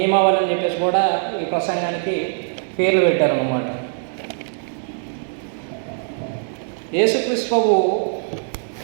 అని చెప్పేసి కూడా ఈ ప్రసంగానికి పేర్లు పెట్టారన్నమాట. యేసుక్రీస్తు ప్రభు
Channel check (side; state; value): left; silent; digital silence